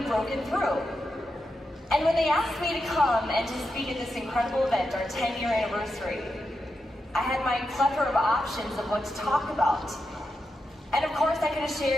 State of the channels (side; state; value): both; normal; correlation 0.87